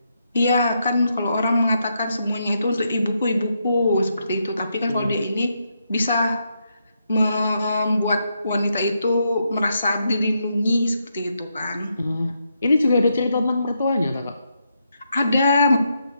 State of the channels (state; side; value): inverted; both; correlation -0.80